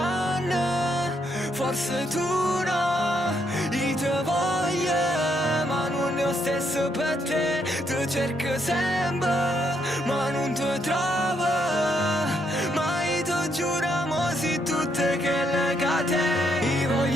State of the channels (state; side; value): normal; both; correlation 0.75